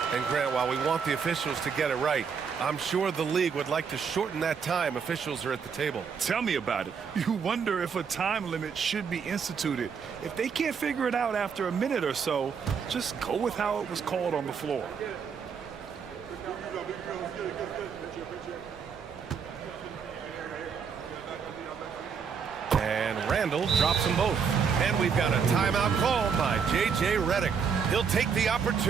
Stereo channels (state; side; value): quieter; left; 6.4 dB